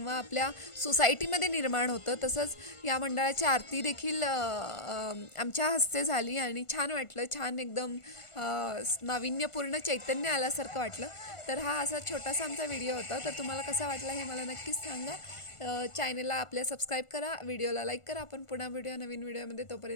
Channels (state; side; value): late; right; 1.4 ms